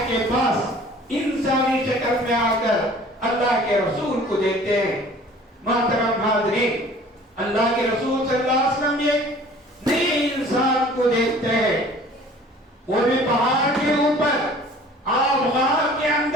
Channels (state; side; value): normal; both; correlation 0.49